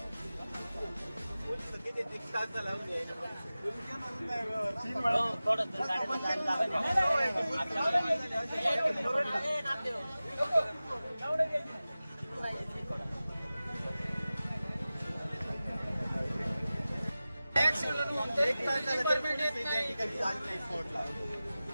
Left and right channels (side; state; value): both; inverted; correlation -0.96